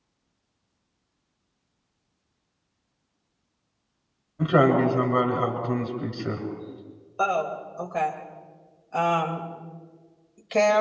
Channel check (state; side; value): identical; both; correlation 1.00